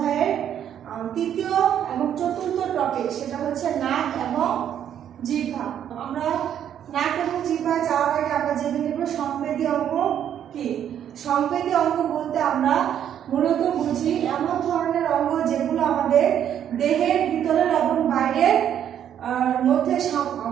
তৃতীয় এবং চতুর্থ টপিক, সেটা হচ্ছে নাক এবং জিহ্বা। আমরা নাক এবং জিহ্বায় যাওয়ার আগে আমরা জেনে নেব সংবেদী অঙ্গ কি। সংবেদী অঙ্গ বলতে আমরা মূলত বুঝি এমন ধরনের অঙ্গ যেগুলো আমাদের দেহের ভিতরের এবং বাইরের মধ্যে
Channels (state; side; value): quieter; left; 9.8 dB